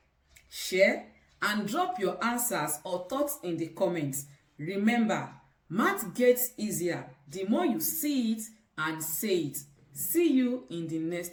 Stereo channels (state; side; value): identical; both; correlation 1.00